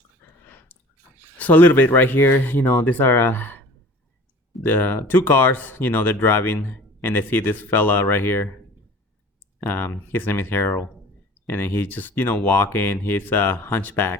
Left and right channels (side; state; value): both; normal; correlation 0.44